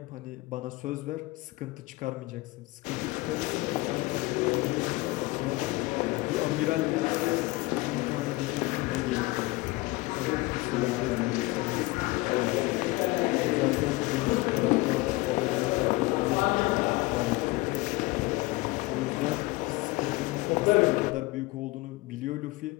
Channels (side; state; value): right; quieter; 21.9 dB